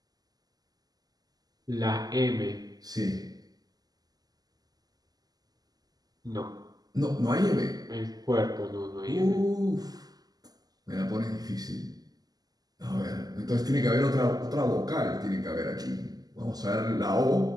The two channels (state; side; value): late; left; 0.18 ms